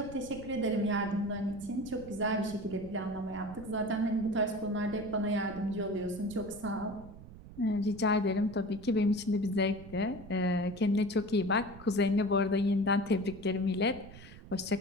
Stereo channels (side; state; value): right; noise; rumble, 17 dB below the sound